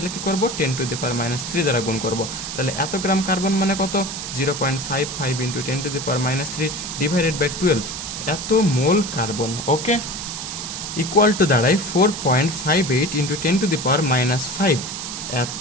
কি করব? 10⁻³ দ্বারা গুণ করব। তাহলে এত গ্রাম কার্বন মানে কত? 0.55 × 10⁻³ ডিভাইডেড বাই 12, এত মোল কার্বন। ওকে, ইকুয়াল টু দাঁড়ায় 4.58 × 10⁻⁵,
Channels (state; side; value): noise; right; hiss, 6 dB below the sound